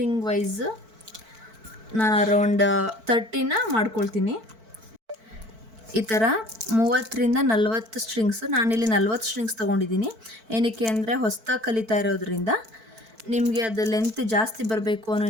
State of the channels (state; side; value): late; left; 4.5 ms